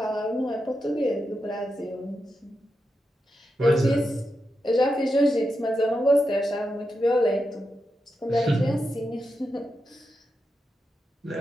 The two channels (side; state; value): both; normal; correlation 0.87